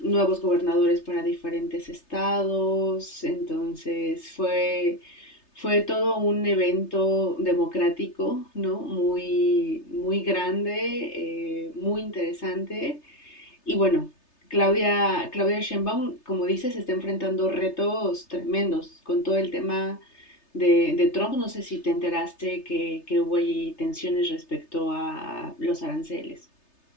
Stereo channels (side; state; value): right; late; 3.3 ms